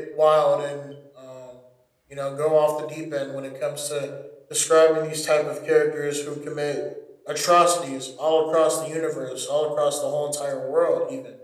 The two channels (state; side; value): identical; both; correlation 1.00